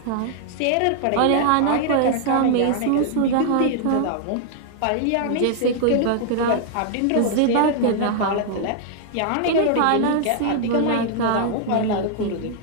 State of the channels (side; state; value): both; different; correlation -0.01